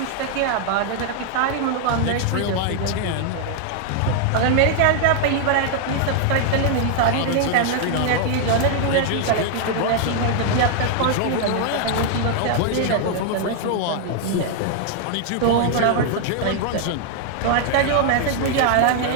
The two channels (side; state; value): both; different; correlation 0.00